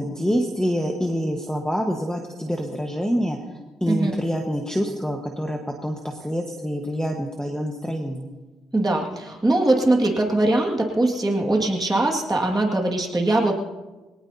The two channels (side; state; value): both; normal; correlation 0.89